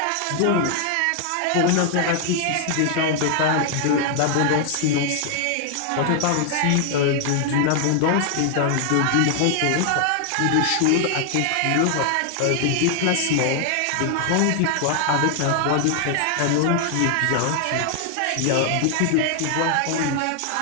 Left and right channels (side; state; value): both; different; correlation 0.00